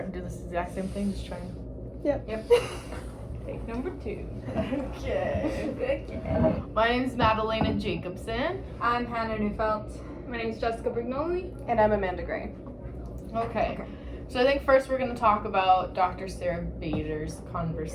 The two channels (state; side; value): identical; both; correlation 1.00